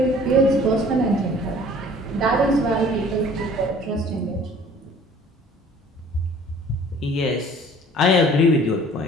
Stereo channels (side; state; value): both; normal; correlation 0.51